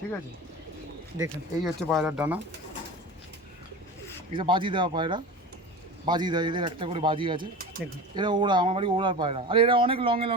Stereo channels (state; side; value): normal; both; correlation 0.31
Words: ঠিক আছে? দেখুন এই হচ্ছে পায়রার ডানা, এটা বাজি দেওয়া পায়রা, বাজি দেয়, এদের একটা করে বাজি আছে। দেখুন, এরা ওড়া, আমার বাড়ি ওড়ার পায়রা। আর এরা অনেক লঙে